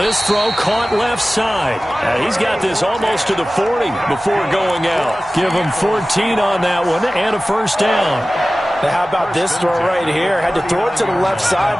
throw caught left side. He's got this almost to the 40 before going out. Give him 14 on that one and a 1st down. Now how about this throw right here? Had to throw it to the left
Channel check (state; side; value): normal; both; correlation 0.97